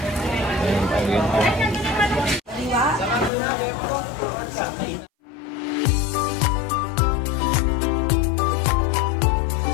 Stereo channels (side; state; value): right; drops out; at 3.3 s